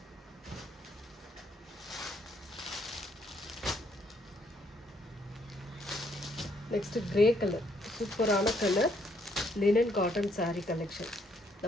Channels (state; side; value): normal; both; correlation 0.70